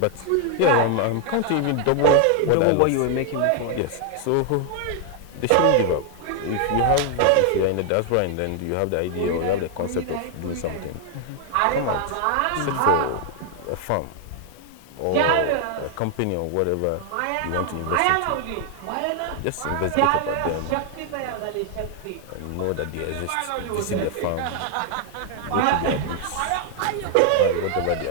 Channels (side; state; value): both; different; correlation 0.00